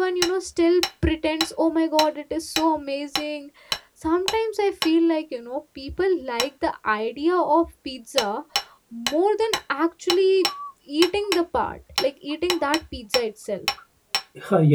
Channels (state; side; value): identical; both; correlation 1.00